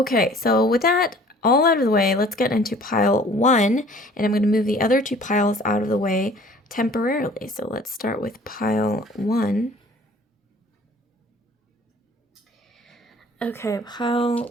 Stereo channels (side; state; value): both; normal; correlation 0.51